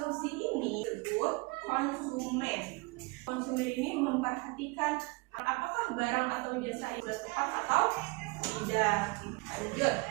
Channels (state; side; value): quieter; left; 26.7 dB